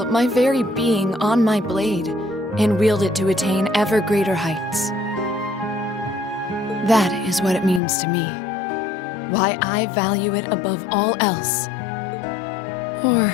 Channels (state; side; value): drops out; right; at 7.8 s